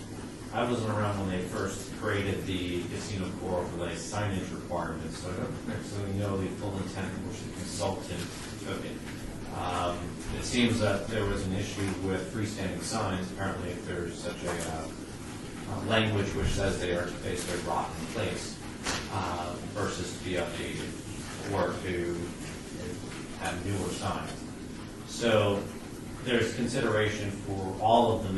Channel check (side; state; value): both; identical; correlation 1.00